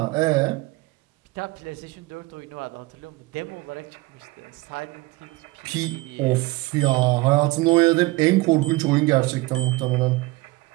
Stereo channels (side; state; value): left; quieter; 21.9 dB